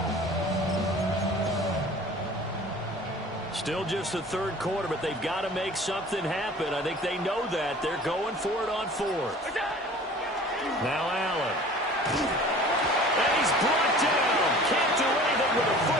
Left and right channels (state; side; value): normal; both; correlation 0.45